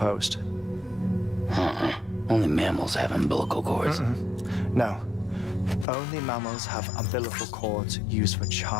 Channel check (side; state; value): right; drops out; at 5.9 s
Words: Only mammals have umbilical cords. No. Only mammals have umbilical cords used for